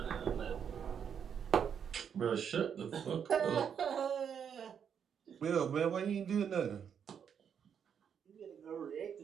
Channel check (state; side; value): quieter; left; 7.8 dB